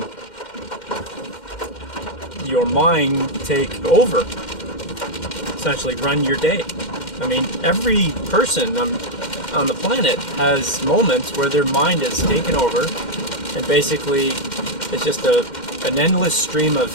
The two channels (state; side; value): late; right; 2.1 ms